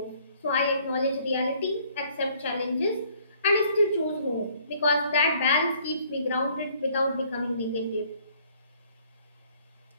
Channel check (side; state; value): both; inverted; correlation -0.61